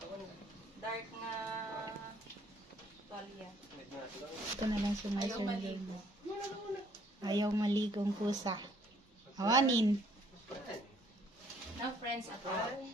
dark nga tuwalya. Ito na lang sumay-sunod mo. Ayaw maligong kusa. Awanin. No friends at all.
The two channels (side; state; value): both; normal; correlation 0.63